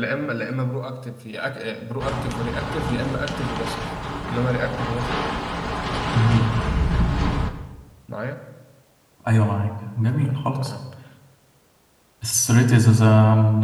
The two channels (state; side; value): identical; both; correlation 1.00